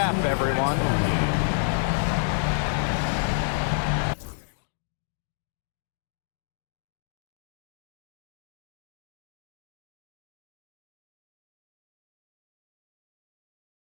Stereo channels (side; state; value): right; silent; digital silence